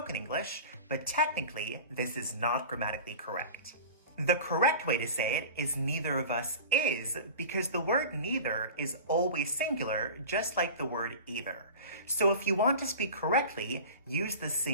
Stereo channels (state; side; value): inverted; both; correlation -0.35